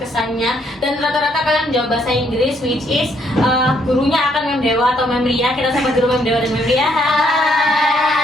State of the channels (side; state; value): both; normal; correlation 0.70